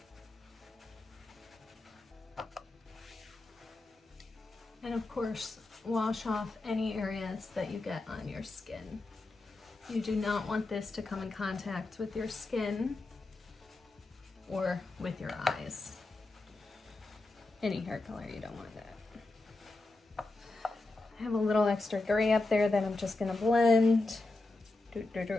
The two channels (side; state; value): right; quieter; 3.2 dB